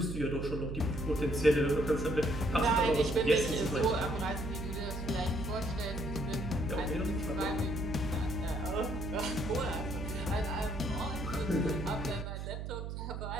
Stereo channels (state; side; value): noise; right; hum, 5 dB below the sound